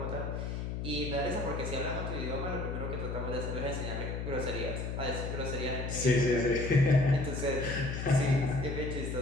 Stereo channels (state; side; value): noise; left; hum, 4 dB below the sound